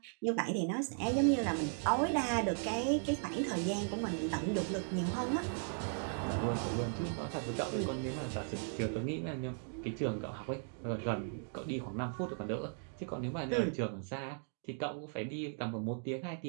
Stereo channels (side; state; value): left; silent; 53 dB below the other